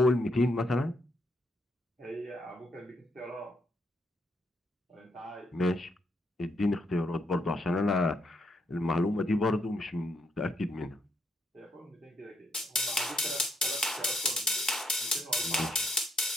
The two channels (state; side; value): normal; both; correlation 0.75